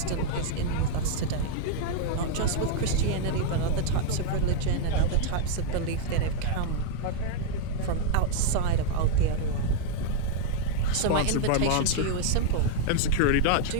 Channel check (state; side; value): different; both; correlation 0.00